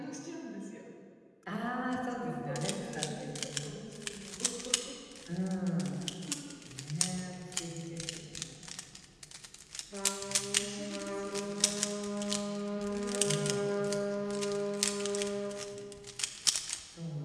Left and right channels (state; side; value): identical; both; correlation 1.00